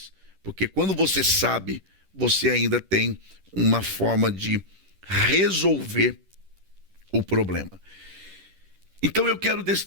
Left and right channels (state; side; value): late; left; 10 ms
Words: Porque quando você sabe, você ainda tem uma forma de resolver o problema. Então eu quero